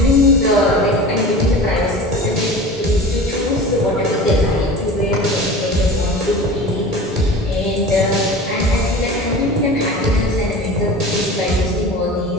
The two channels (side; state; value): both; normal; correlation 0.36